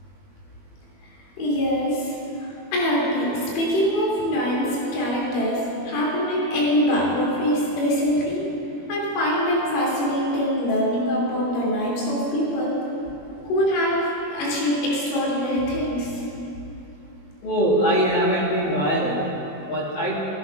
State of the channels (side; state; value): right; late; 21 ms